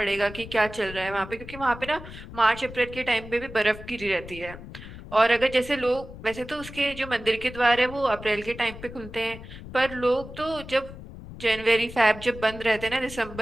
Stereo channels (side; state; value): left; noise; rumble, 14 dB below the sound